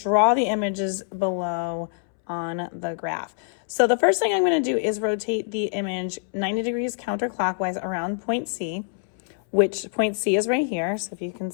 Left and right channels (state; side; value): silent; right; 62 dB below the other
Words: the images below on the graph. So the first thing I'm going to do is rotate the image 90 degrees counterclockwise around point C, which point C is right here. So if you can